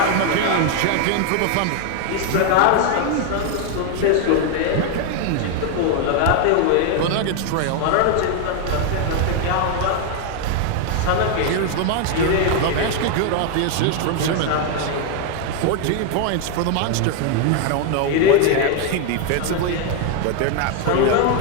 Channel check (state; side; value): different; both; correlation 0.01